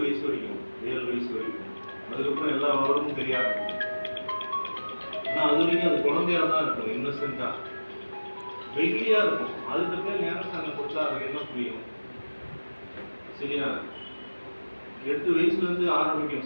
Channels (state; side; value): inverted; both; correlation -1.00